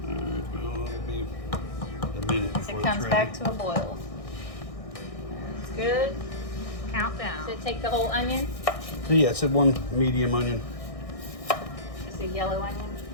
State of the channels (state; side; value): late; right; 1.6 ms